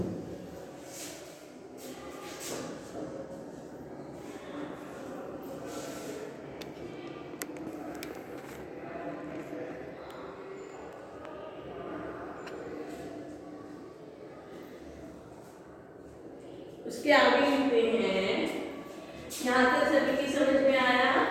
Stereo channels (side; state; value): both; identical; correlation 1.00